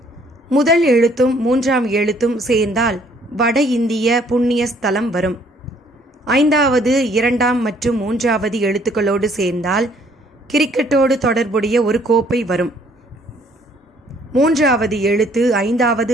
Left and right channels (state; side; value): normal; both; correlation 0.62